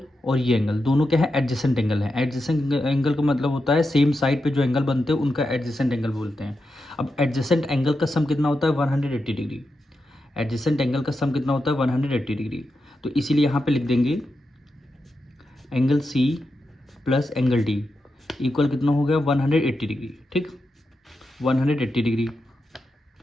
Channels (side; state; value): both; normal; correlation 0.88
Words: और ये एंगल दोनों क्या है एडजेसेंट एंगल है। एडजेसेंट एंगल का मतलब होता है सेम साइड पे जो एंगल बनते हैं उनका एडजेसेंट एंगल बोलते हैं। अब एडजेसेंट एंगल का सम कितना होता है 180 डिग्री। एडजेसेंट एंगल का सम कितना होता है 180 डिग्री। तो इसीलिए यहाँ पे लिख देंगे angle C plus angle D equal कितना हो गया 180 डिग्री। ठीक, 180 डिग्री।